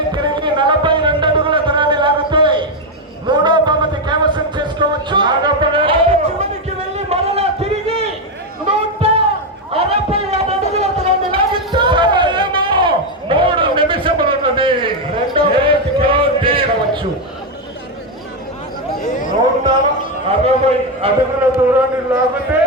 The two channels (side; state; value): both; normal; correlation 0.06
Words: తిరిగి 42 అడుగుల దూరాన్ని లాగితే 3వ బహుమతి కైవసం చేసుకోవచ్చు. చివరికి వెళ్ళి మరలా తిరిగి 167 అడుగుల దూరాన్ని లాగితే 3 నిమిషములున్నది. 2వ బహుమతి కైవసం చేసుకోవచ్చు. 160 అడుగుల దూరాన్ని లాగితే